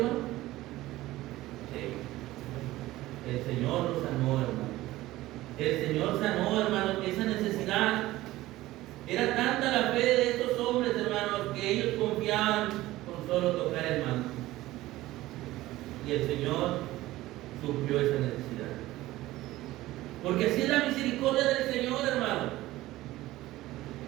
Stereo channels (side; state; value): left; quieter; 16.9 dB